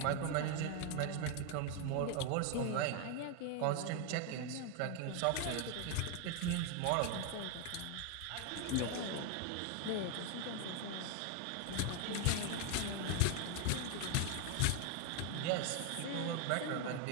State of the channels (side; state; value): both; different; correlation 0.01